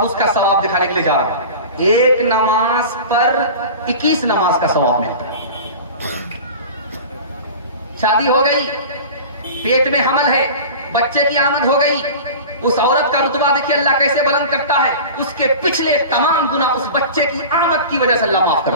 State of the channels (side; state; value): both; inverted; correlation -0.35